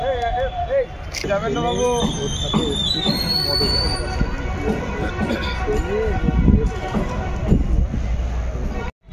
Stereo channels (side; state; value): both; identical; correlation 1.00